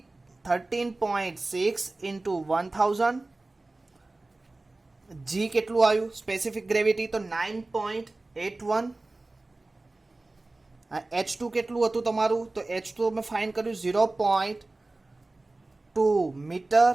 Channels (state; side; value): quieter; left; 3.0 dB